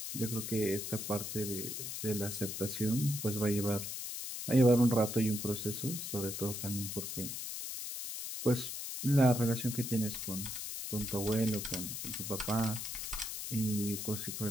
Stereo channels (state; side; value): noise; left; hiss, 5 dB below the sound